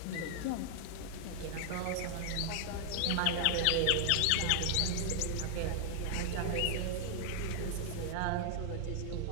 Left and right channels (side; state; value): both; different; correlation 0.00